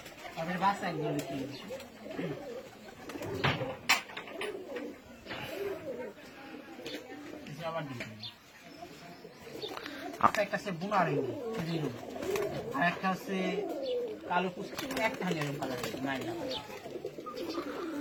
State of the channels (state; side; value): identical; both; correlation 1.00